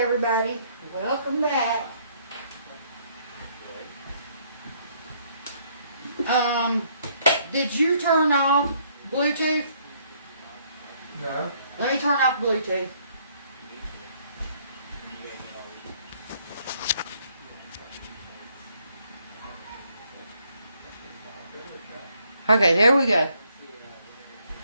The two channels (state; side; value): inverted; both; correlation -0.67